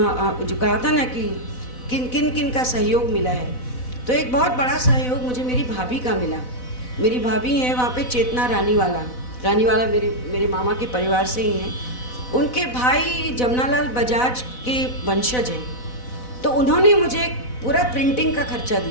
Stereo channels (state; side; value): late; right; 4.0 ms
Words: कहा था ना कि किन किन किन का सहयोग मिला है, तो एक बहुत बड़ा सहयोग मुझे मेरी भाभी का मिला। मेरी भाभी हैं वहाँ पे चेतना रानीवाला मेरे मामा के परिवार से ही हैं। उनके भाई जमनालाल बजाज के वंशज हैं, तो उन्होंने मुझे पूरा प्रिंटिंग का खर्चा